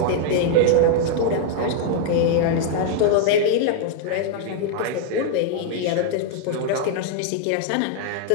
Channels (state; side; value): different; both; correlation 0.00